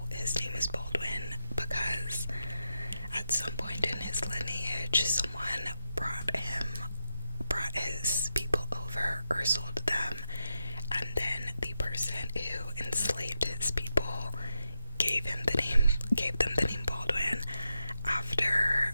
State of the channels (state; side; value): inverted; both; correlation -0.87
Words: his name is Baldwin because at some point in his lineage someone brought his people over or sold them, and then the person who enslaved his people gave them the name Baldwin after